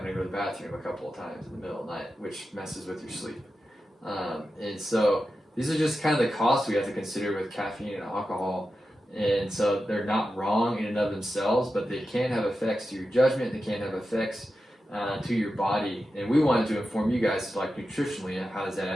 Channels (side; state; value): both; normal; correlation 0.91